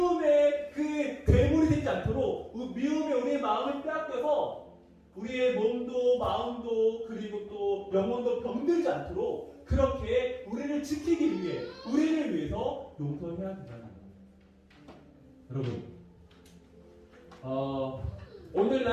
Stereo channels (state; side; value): identical; both; correlation 1.00